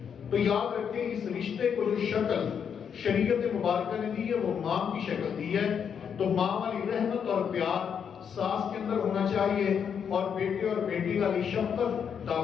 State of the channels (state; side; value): quieter; right; 7.5 dB